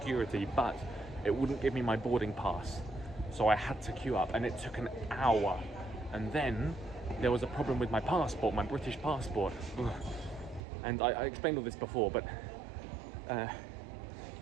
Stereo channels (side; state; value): left; drops out; at 10.6 s